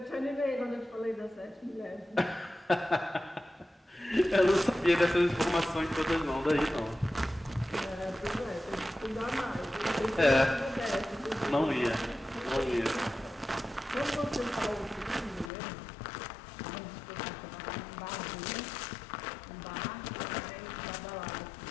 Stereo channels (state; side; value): drops out; right; at 15.5 s